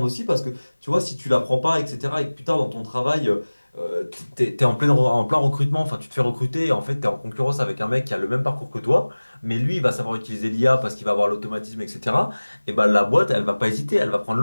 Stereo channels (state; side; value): inverted; both; correlation -1.00